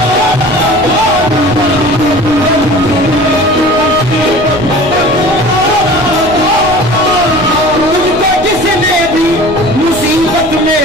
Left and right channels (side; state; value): left; noise; rumble, 14 dB below the sound